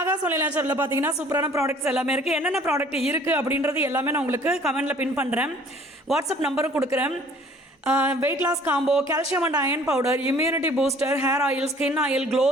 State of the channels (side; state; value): both; normal; correlation 0.54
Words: ஒன்லி நேச்சரில் பார்த்தீங்கன்னா சூப்பரான ப்ராடக்ட்ஸ் எல்லாமே இருக்குது. என்னென்ன ப்ராடக்ட் இருக்குது அப்படின்றது எல்லாமே நான் உங்களுக்கு கமெண்டில் பின் பண்ணுறேன். வாட்ஸ்அப் நம்பரும் கொடுக்குறேன். Weight loss combo, calcium and iron powder, immunity booster, hair oil, skin oil, glow